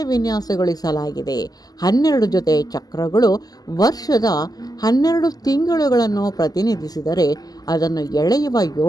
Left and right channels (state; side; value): late; right; 0.18 ms